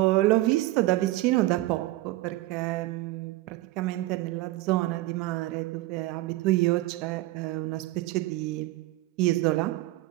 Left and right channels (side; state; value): left; quieter; 17.7 dB